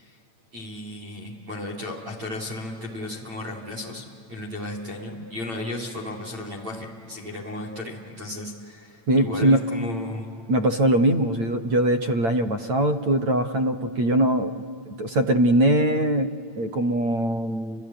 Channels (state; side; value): late; left; 8.9 ms